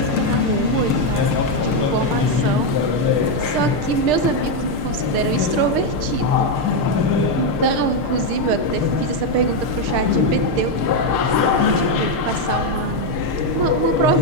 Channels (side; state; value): left; late; 6.7 ms